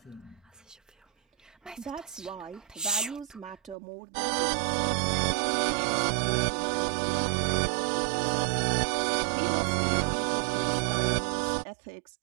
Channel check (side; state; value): left; drops out; at 3.8 s